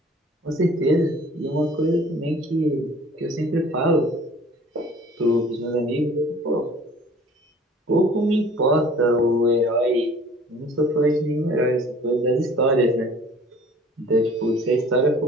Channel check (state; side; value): normal; both; correlation 0.50